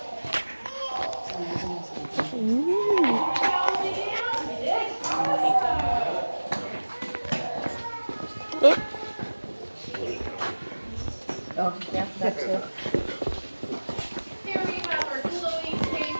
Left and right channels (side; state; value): both; inverted; correlation -1.00